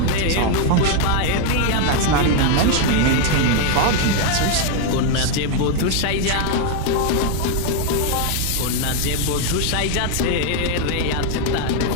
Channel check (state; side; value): different; both; correlation 0.00